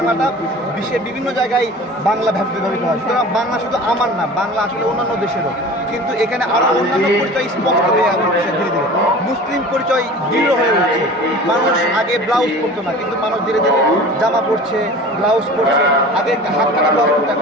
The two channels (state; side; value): normal; both; correlation 0.39